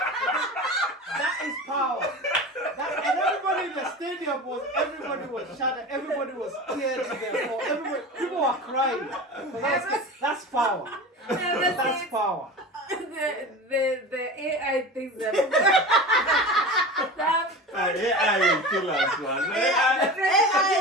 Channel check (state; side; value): normal; both; correlation 0.32